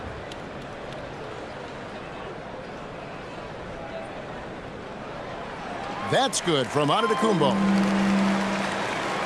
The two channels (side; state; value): both; identical; correlation 1.00